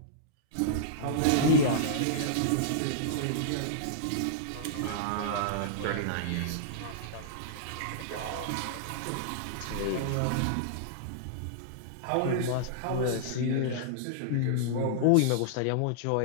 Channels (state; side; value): different; both; correlation -0.02